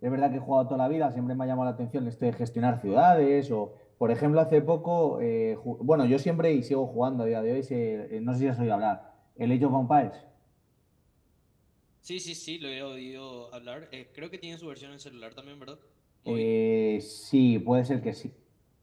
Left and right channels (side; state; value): both; identical; correlation 1.00